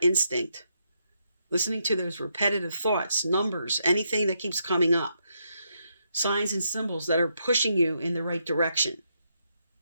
instinct. Listening to those repetitive thoughts, numbers, anything that keeps coming up. Signs and symbols that are pushing you in the right direction.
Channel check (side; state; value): both; inverted; correlation -0.79